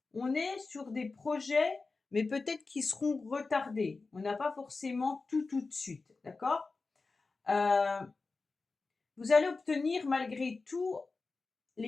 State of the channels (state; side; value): quieter; right; 4.0 dB